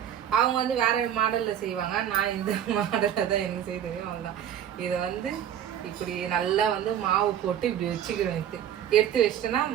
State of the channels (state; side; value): quieter; left; 10.0 dB